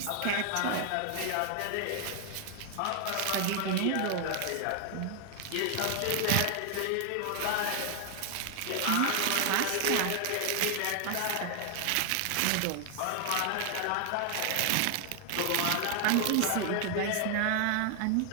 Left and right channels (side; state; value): both; different; correlation 0.00